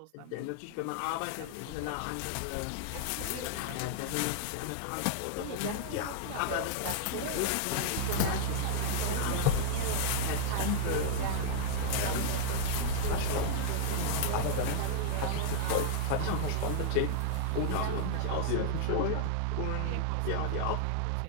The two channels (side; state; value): both; different; correlation -0.01